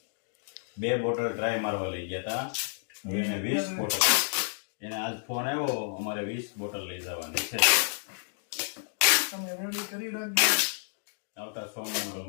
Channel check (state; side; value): silent; right; digital silence